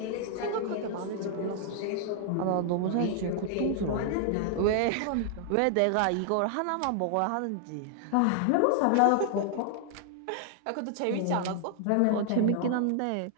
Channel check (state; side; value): different; both; correlation 0.00